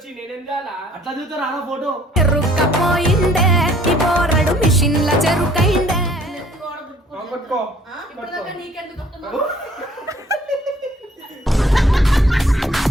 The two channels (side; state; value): both; normal; correlation 0.58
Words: నేనేం చేయాలా? అట్లా దిగుతారు ఆడ ఫోటో. చెరుకపోయిండే ఈ బోరడు మిషన్ల చెరుకైండే.